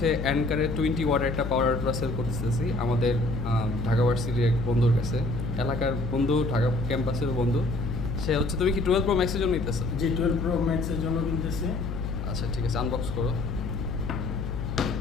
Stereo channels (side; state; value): left; noise; hum, 4 dB below the sound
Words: অ্যানকারের 20 ওয়াটের একটা পাওয়ার আল্ট্রা সেল করতেছি আমাদের ঢাকা ভার্সিটির এক বন্ধুর কাছে, এলাকার বন্ধু, ঢাকা ক্যাম্পাসের বন্ধু। সে হচ্ছে, তুমি কি 12 প্রো ম্যাক্সের জন্য নিতেছো? জি 12 প্রো ম্যাক্সের জন্য কিনতেছি। আচ্ছা ঠিক আছে, আনবক্স করো।